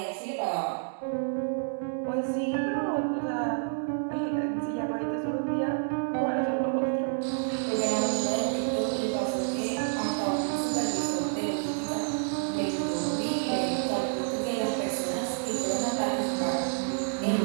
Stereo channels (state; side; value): silent; left; 59 dB below the other